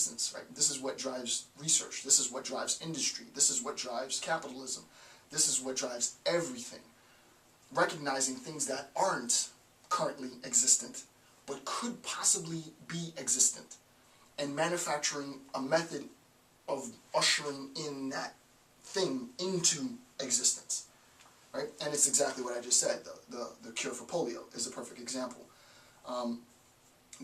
right? This is what drives research. This is what drives industry. This is what drives capitalism. This is what drives everything. Recognizing things that aren't currently existent, but could possibly be existent, and manufacturing a method of ushering in that thing into existence, right? And it's exactly what I just said. The cure for polio is a perfect example.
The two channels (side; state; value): both; identical; correlation 1.00